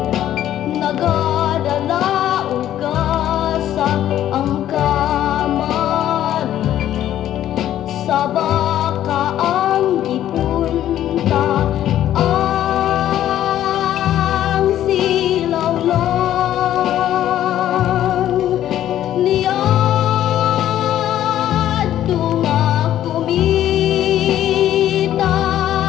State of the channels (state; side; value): quieter; right; 12.0 dB